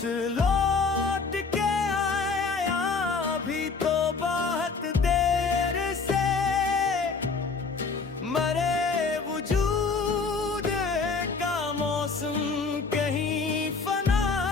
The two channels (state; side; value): quieter; right; 4.7 dB